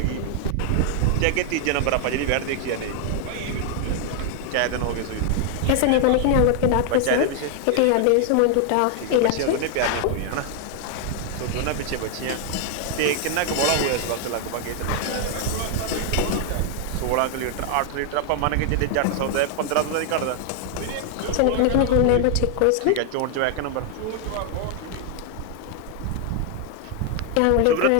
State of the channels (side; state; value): both; different; correlation 0.00